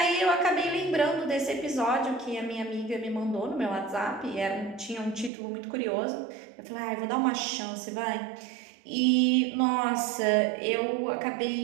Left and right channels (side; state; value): left; drops out; at 5.3 s